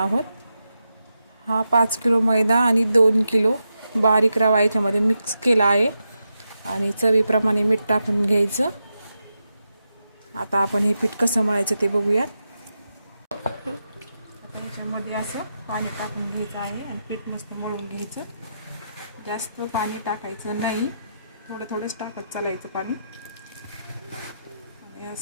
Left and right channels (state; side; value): inverted; both; correlation -0.87